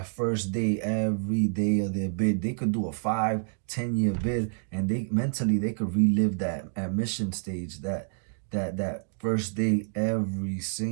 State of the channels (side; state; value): left; silent; digital silence